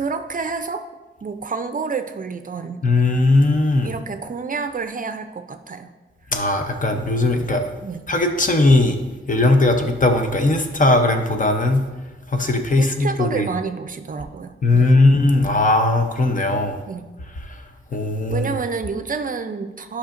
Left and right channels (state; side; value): normal; both; correlation 0.59